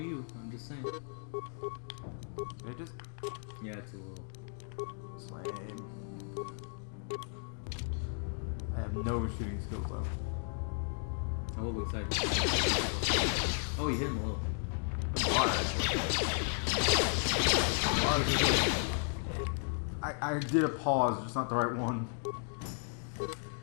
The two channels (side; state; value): right; silent; 55 dB below the other